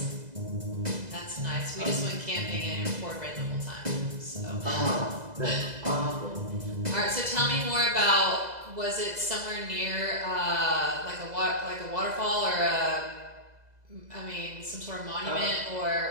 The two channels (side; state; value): left; late; 2.0 ms